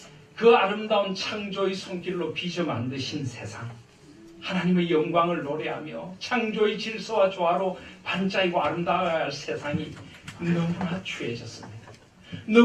그 아름다운 창조의 손길로 빚어 만드신 세상, 하나님의 영광을 노래하며 창조의 질서와 조화로 반짝이고 아름다워야 할 세상이 너무나 추해졌습니다.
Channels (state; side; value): identical; both; correlation 1.00